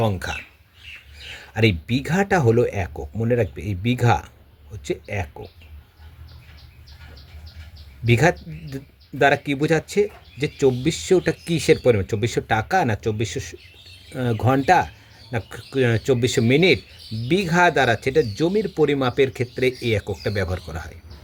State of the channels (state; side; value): identical; both; correlation 1.00